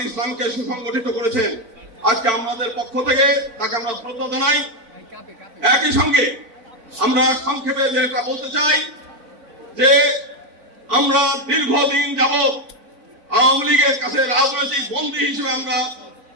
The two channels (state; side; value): late; left; 4.4 ms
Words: ইসলামকে সুসংগঠিত করেছেন। আজকে আমাদের পক্ষ থেকে তাকে আমরা শ্রদ্ধা জানাই। একই সঙ্গে আমরা সংক্ষেপে যেটা বলতে চাই যে আমরা দীর্ঘদিন যাবৎ আওয়ামী লীগের কাছে রাজনৈতিক বন্দী হিসেবে আমরা